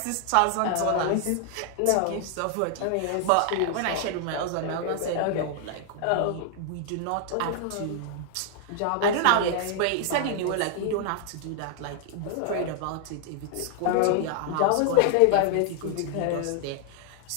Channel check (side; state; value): both; different; correlation 0.00